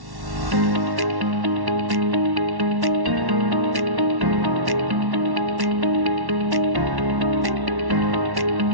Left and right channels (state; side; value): late; left; 1.1 ms